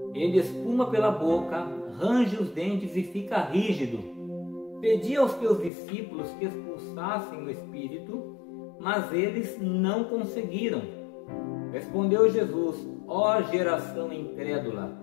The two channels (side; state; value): right; drops out; at 5.7 s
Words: Ele espuma pela boca, range os dentes e fica rígido. Pedi aos teus discípulos que expulsassem o espírito, mas eles não conseguiram. Respondeu Jesus: ó geração incrédula,